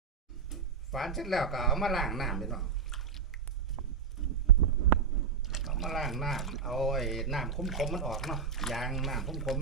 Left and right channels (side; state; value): left; quieter; 5.9 dB